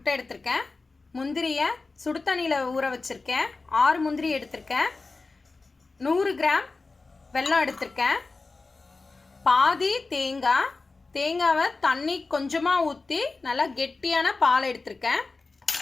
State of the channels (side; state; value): right; quieter; 3.8 dB